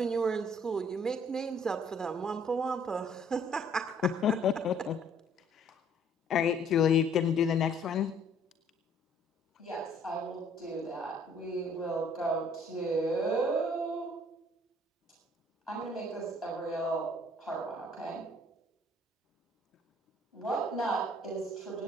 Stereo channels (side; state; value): both; normal; correlation 0.60